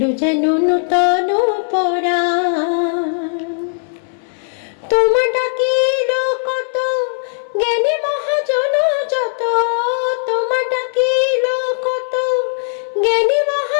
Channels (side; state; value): right; silent; 64 dB below the other